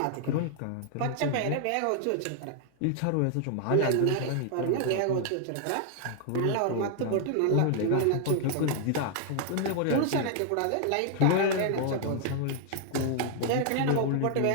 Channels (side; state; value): both; different; correlation 0.00